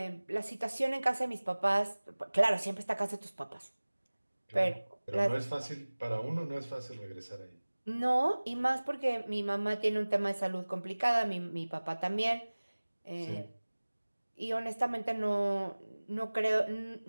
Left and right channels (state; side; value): inverted; both; correlation -1.00